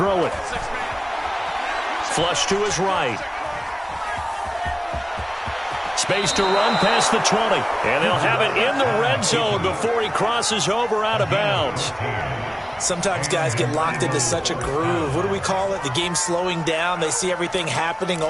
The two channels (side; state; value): both; identical; correlation 1.00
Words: it. Flush to his right. Space to run past the 20. And they'll have it in the red zone before he crosses over out of bounds. Sometimes guys get locked into such a groove. What do we call it? The game slowing down. They see everything happening